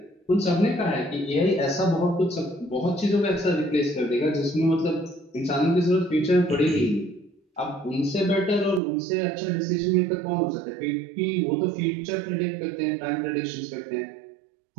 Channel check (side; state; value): left; drops out; at 8.8 s